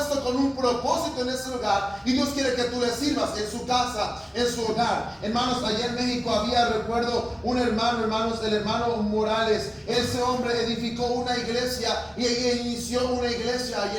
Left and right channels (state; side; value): identical; both; correlation 1.00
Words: con un propósito en ese lugar, y Dios quiere que tú le sirvas en su casa, en su hogar. Hermanos, allá en México había, recuerdo, un hermano, hermanos, el hermano Morales. Ese hombre edificó una iglesia y inició una iglesia allá